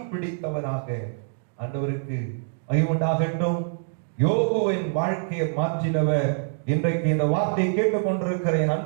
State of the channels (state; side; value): silent; left; digital silence